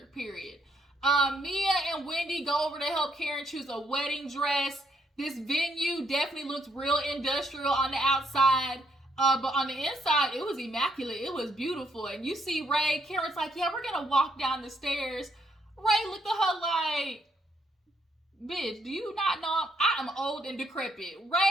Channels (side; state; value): both; normal; correlation 0.73